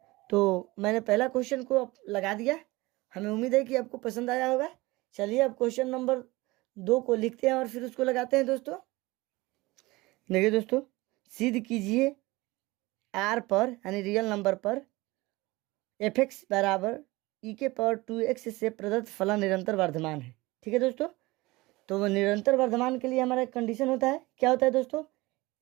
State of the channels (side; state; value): left; quieter; 21.3 dB